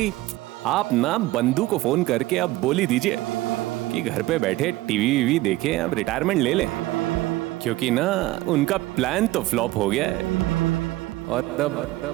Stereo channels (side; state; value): left; quieter; 18.1 dB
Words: आप ना बंधु को फोन करके अब बोल ही दीजिए कि घर पे बैठे टीवी वीवी देखे, अब रिटायरमेंट ले लें, क्योंकि ना उनका प्लान तो फ्लॉप हो गया है और तब